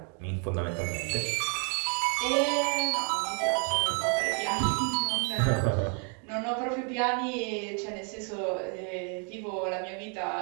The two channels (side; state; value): left; quieter; 38.6 dB